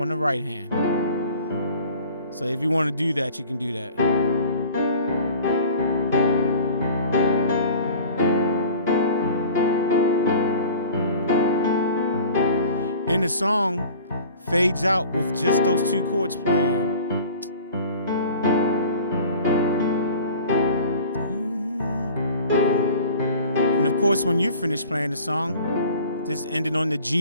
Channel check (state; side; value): inverted; both; correlation -0.44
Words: the right hand. So if you want to do that, you can do that. And the song fades out with just those two chords playing. And of course, when you're finished playing the song, just end it on the